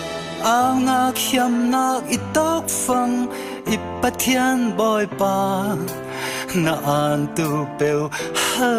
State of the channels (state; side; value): identical; both; correlation 1.00